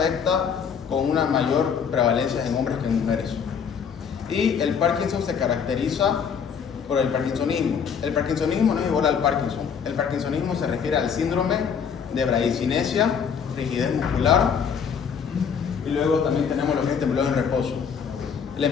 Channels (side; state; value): right; quieter; 6.9 dB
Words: con una mayor prevalencia en hombres que en mujeres. Y el Parkinson se caracteriza por el parkinsonismo. El parkinsonismo no es igual al Parkinson. El parkinsonismo se refiere al síndrome de bradicinesia, rigidez muscular, y luego también tenemos lo que es temblor en reposo. La